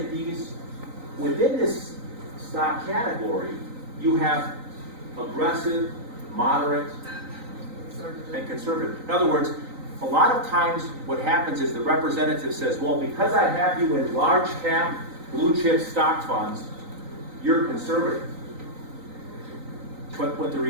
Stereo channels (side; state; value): left; late; 3.9 ms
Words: these, within this stock category, you have aggressive, moderate, and conservative. In other words, a lot of times what happens is the representative says, well, because I have you in large cap, blue chip stock funds, you're conservative. But what the